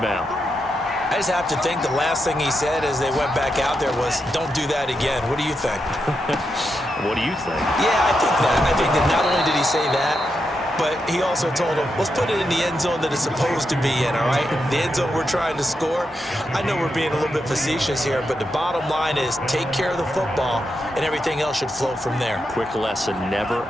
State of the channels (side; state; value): both; normal; correlation 0.85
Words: I just have to think the last thing he said as they went back out there was, don't do that again. What do you think? What do you think? Yeah, I think that. I think that not only did he say that, but he also told him, let's put it in the end zone that it's supposed to be in, all right? The end zone we're trying to score. I know we're being a little bit facetious here, but the bottom line is take care of the football, and everything else should flow from there. Quick lesson, never